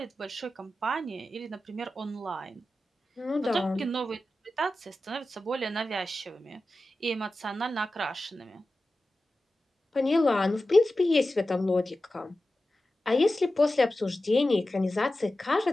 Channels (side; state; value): both; normal; correlation 0.94